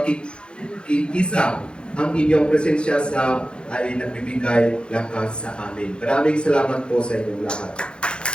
Ang inyong presensya ay nagbibigay lakas sa amin. Maraming salamat po sa inyong lahat.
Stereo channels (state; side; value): late; right; 0.053 ms